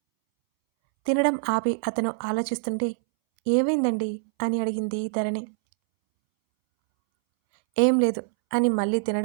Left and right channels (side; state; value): left; silent; 62 dB below the other